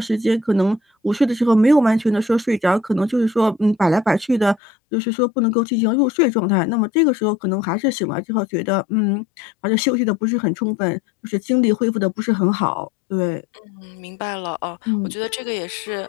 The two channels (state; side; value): drops out; right; at 4.6 s